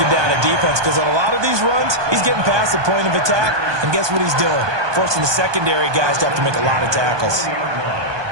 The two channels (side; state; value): left; late; 1.2 ms